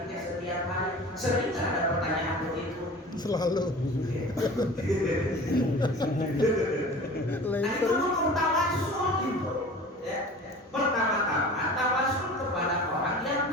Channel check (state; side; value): normal; both; correlation 0.40